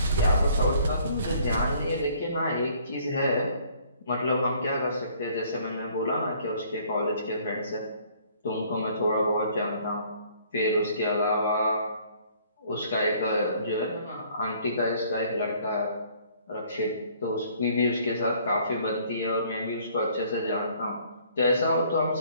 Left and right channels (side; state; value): both; inverted; correlation -0.59